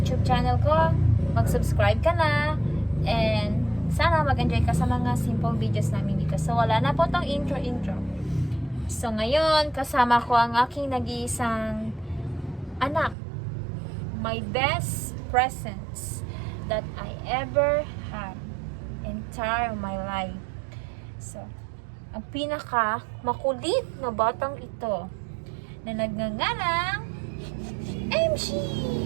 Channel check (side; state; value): left; drops out; at 13.2 s